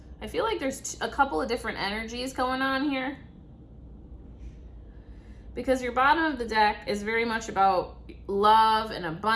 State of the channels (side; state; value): both; identical; correlation 1.00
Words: I feel like there's a couple of different energies going on here. Because your bottom of the deck is very much about love and